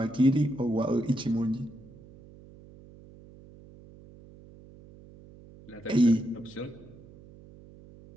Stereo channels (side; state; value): right; noise; hum, 21 dB below the sound